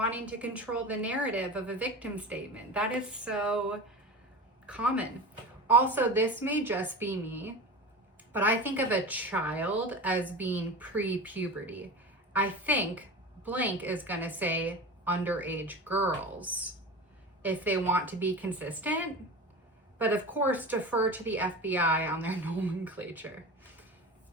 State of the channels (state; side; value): normal; both; correlation 0.30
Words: to control the narrative of a victim statement. That is so common. Also, this may just be me, but I think of a child as being pre-puberty. I think blank is going to say underage girls if they want to be consistent, but of course defer to the FBI on their nomenclature.